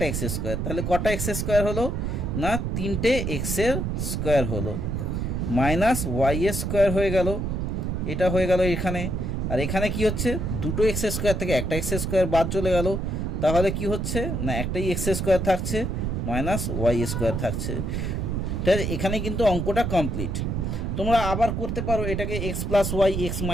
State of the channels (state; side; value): noise; right; rumble, 1 dB below the sound